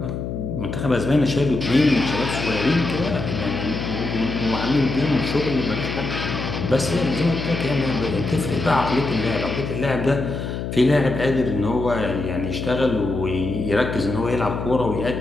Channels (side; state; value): left; noise; hum, 5 dB below the sound